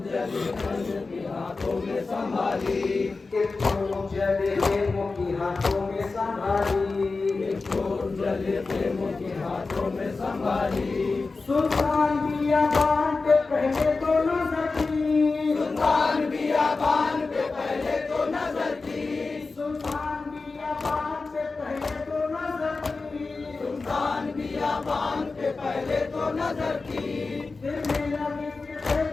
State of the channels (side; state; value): right; quieter; 3.9 dB